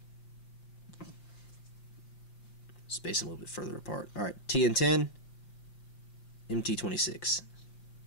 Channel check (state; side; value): late; right; 5.7 ms